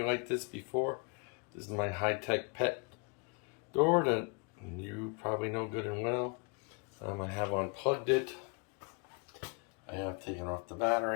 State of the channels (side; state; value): right; quieter; 34.4 dB